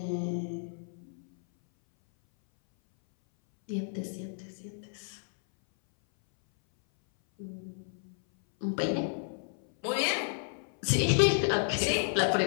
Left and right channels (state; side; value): silent; right; 57 dB below the other